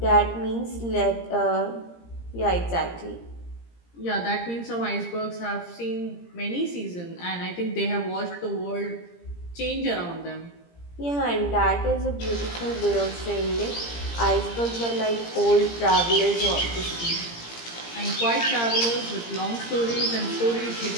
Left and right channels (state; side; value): late; right; 17 ms